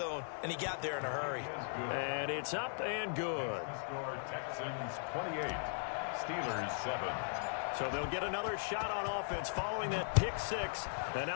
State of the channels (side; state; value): right; silent; digital silence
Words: and he got there in a hurry. And it's up and good. Score Texans 28, Steelers 7. So they'll get another shot on offense following that pick 6. And